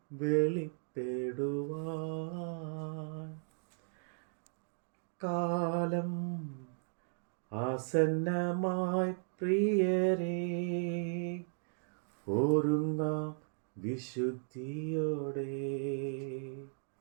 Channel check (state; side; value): silent; left; digital silence